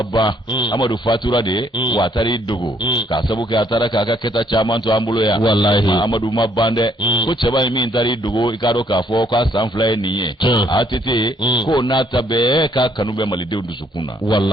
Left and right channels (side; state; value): both; normal; correlation 0.67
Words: amadou fatura de watari iddugo ka sabu ka atara ka keta chaman to ambulo ya wallahi amadou mabande ko cheba mi intari iddugo ikado ka fo ka sanfla niye atete ko nata be ka kanube malide sukuna